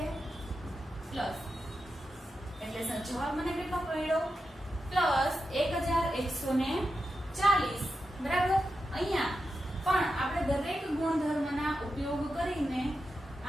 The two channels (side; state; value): both; normal; correlation 0.89